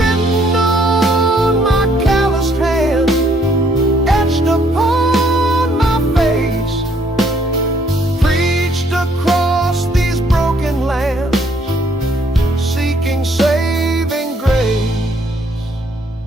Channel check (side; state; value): both; normal; correlation 0.66